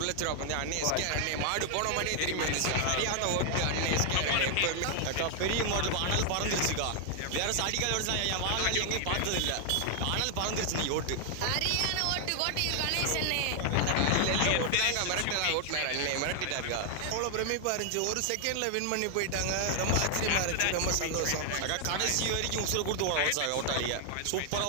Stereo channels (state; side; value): different; both; correlation 0.00